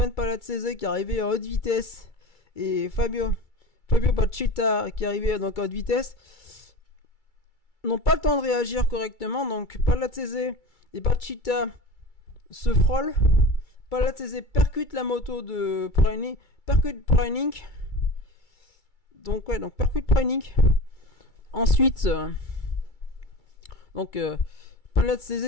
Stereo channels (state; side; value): late; right; 2.3 ms